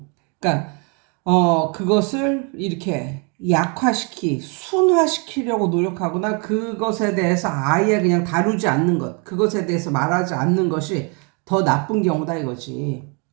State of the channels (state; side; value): quieter; left; 34.5 dB